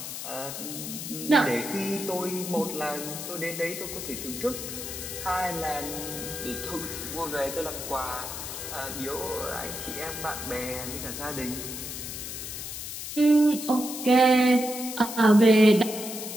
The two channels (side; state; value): left; noise; hiss, 7 dB below the sound